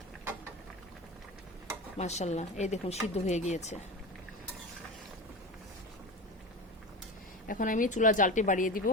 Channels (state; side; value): normal; both; correlation 0.27